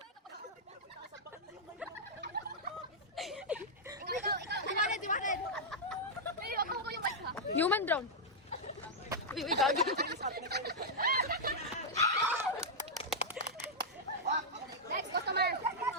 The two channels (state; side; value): normal; both; correlation -0.06